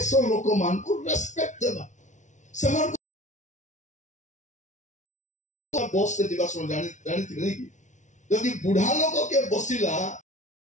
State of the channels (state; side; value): late; right; 0.36 ms